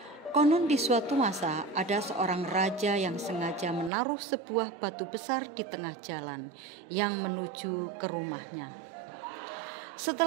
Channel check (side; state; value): left; drops out; at 3.9 s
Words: Konon di suatu masa ada seorang raja yang sengaja menaruh sebuah batu besar di tengah jalan yang menuju ke rumahnya.